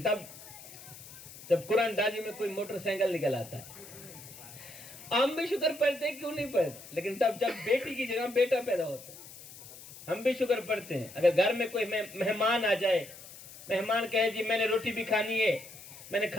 تب جب قرآن دازی میں کوئی موٹر سائیکل نکل آتا ہے. ہم بھی شکر پڑھتے ہیں, کیوں نہیں پڑھتے, لیکن تب جب بیٹی کی جگہ بیٹا پیدا ہوتا ہے ہم بھی شکر پڑھتے ہیں. اگر گھر میں کوئی مہمان آ جائے, مہمان کہے جی میں نے روٹی بھی کھانی ہے, میں نے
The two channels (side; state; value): left; noise; hiss, 16 dB below the sound